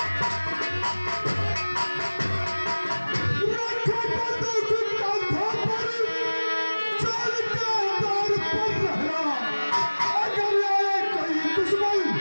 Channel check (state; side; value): inverted; both; correlation -1.00